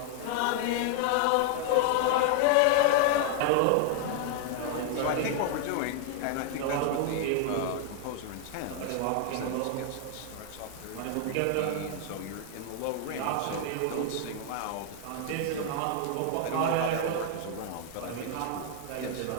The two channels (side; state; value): both; different; correlation 0.00